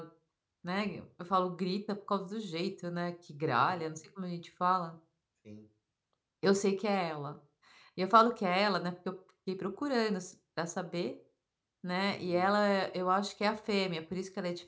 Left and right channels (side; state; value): both; identical; correlation 1.00